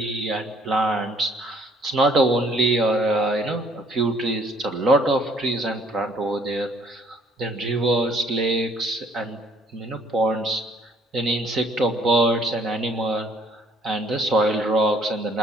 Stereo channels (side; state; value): both; normal; correlation 0.61